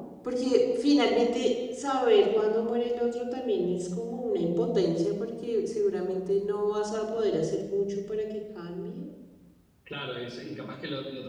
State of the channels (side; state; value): both; identical; correlation 1.00